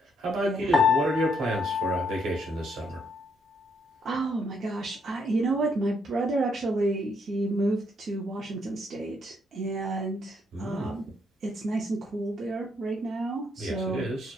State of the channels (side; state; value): both; normal; correlation 0.73